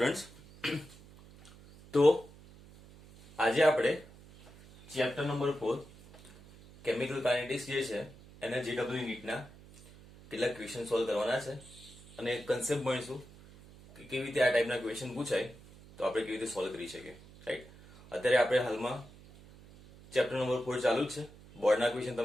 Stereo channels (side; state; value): right; noise; hum, 21 dB below the sound